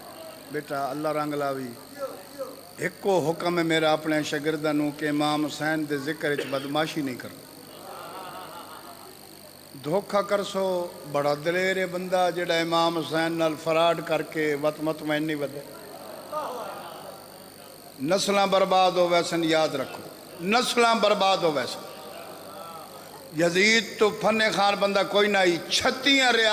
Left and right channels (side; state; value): both; identical; correlation 1.00